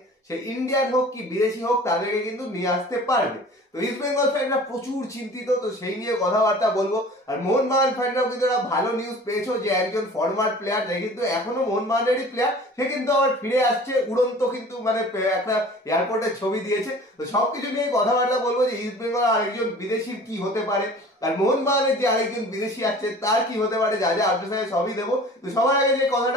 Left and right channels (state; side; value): normal; both; correlation 0.44